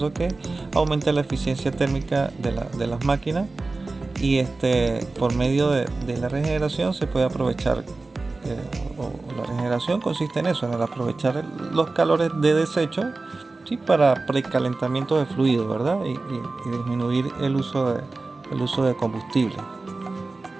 que aumenta la eficiencia térmica de las máquinas, y por medio de la regeneración se puede aprovechar, la regeneración consiste en eso, en el aprovechar los calores de desecho, ¿sí? Para precalentamiento de fluidos, ¿verdad? Y disminuir el uso de combustible.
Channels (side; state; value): left; quieter; 3.5 dB